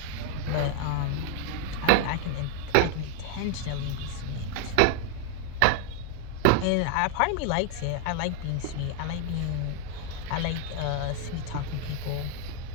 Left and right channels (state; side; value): different; both; correlation 0.00